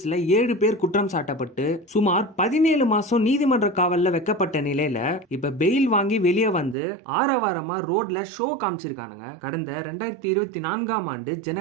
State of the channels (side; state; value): left; drops out; at 6.8 s